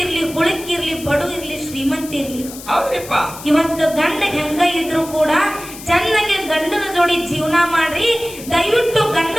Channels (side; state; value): left; noise; hiss, 14 dB below the sound